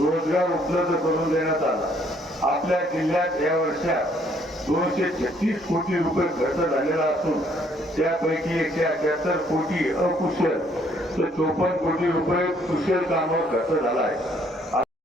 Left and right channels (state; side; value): normal; both; correlation 0.65